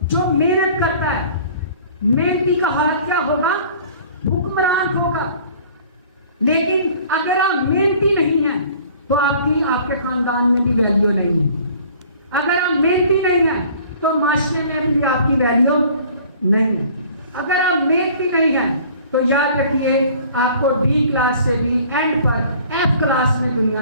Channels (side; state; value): both; inverted; correlation -0.51